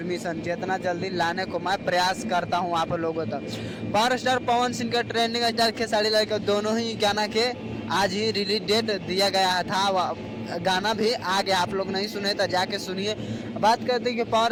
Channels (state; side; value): identical; both; correlation 1.00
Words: जितना जल्दी लाने को मैं प्रयास करता हूं आप लोगों तक। पावर स्टार पवन सिंह का ट्रेंडिंग स्टार खेसारी लाल के दोनों ही गाना के आज ही रिलीज डेट दिया गया था। गाना भी आ गया, आप लोग नहीं सुने तो जाके सुनिए। बात करते हैं कि